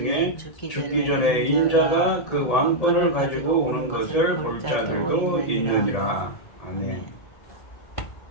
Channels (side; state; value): right; late; 1.7 ms